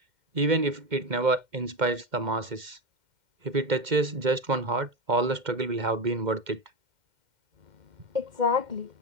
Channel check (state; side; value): late; left; 2.1 ms